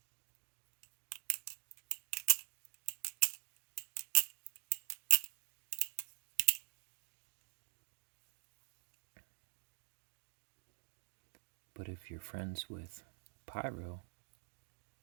But if you're friends with Pyro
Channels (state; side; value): silent; left; digital silence